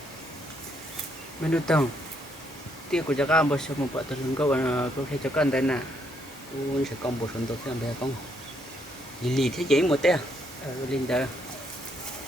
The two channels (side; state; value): both; normal; correlation 0.73